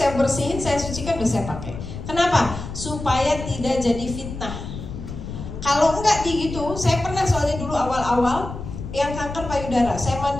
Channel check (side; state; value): left; noise; rumble, 9 dB below the sound